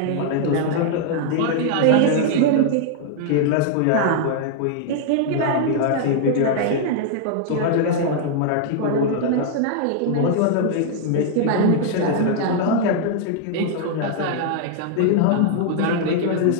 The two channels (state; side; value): different; both; correlation -0.01